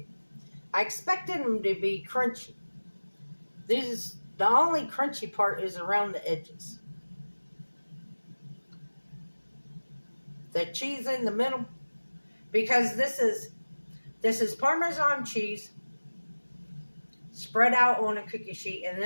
I expected them to be crunchy. The only crunchy part is around the edges. The cheese in the middle. Because this is Parmesan cheese spread out on a cookie sheet, and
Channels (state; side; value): inverted; both; correlation -1.00